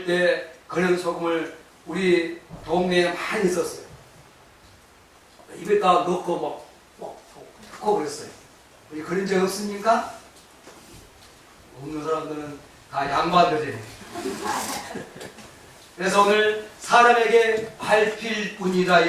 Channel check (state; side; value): identical; both; correlation 1.00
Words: 때 그런 소금을 우리 동네에 많이 있었어요. 입에다 넣고 넣고 그랬어요. 우리 그런 적 없습니까? 없는 사람들은 다 양반들이에요. 그래서 오늘 사람에게 밟힐 뿐이다